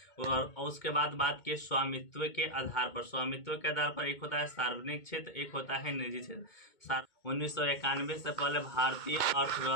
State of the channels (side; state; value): right; late; 2.2 ms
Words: और उसके बाद बात की स्वामित्व के आधार पर। स्वामित्व के आधार पर एक होता है सार्वजनिक क्षेत्र, एक होता है निजी क्षेत्र। 1991 से पहले भारतीय